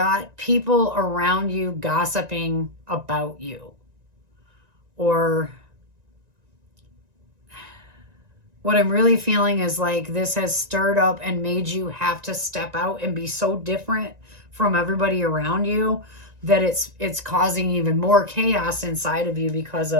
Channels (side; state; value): left; late; 1.9 ms